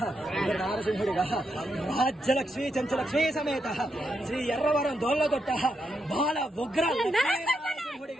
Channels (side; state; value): both; normal; correlation 0.82